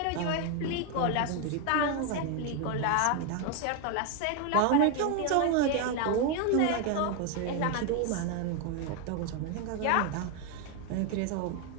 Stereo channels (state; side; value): different; both; correlation 0.01